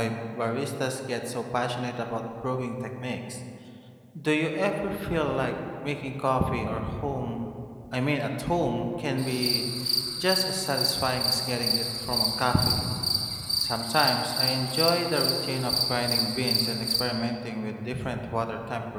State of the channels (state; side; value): identical; both; correlation 1.00